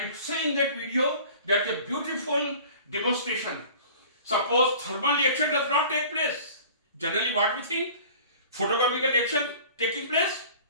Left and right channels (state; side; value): inverted; both; correlation -0.45